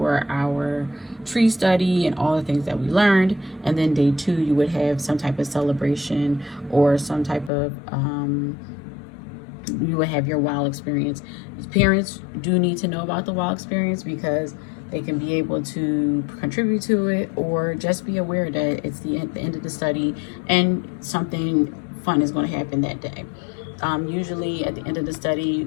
our tree study and all the things that we learned, and then day 2 you would have some type of celebration or some type of you would have your wild experience. Parents do need to know about the wild experience because they can be able to contribute to it, or just be aware that it's the end of the study and something fun is going to happen that day. Usually at the end of the study,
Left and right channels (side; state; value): right; drops out; at 7.5 s